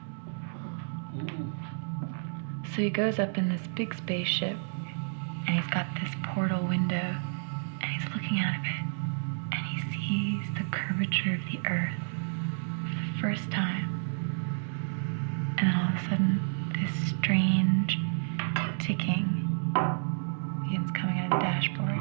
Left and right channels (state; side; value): silent; left; digital silence